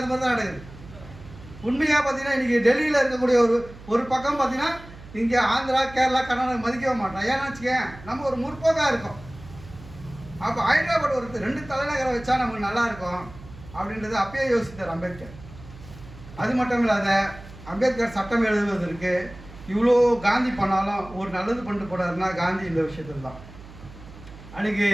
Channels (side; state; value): right; noise; hum, 18 dB below the sound